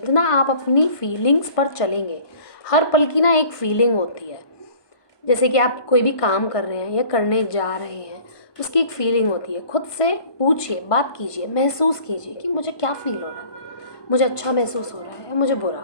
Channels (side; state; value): right; late; 1.2 ms